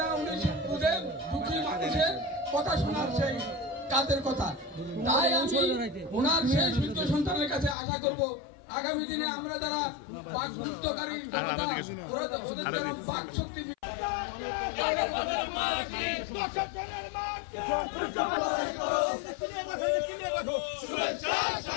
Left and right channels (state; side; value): drops out; right; at 7.8 s